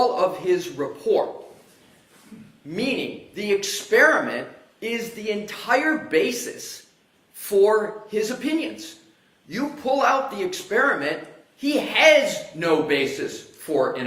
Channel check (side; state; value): both; identical; correlation 1.00